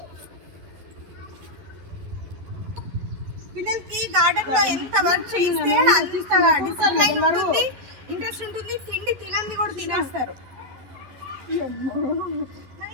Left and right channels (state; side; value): late; left; 11 ms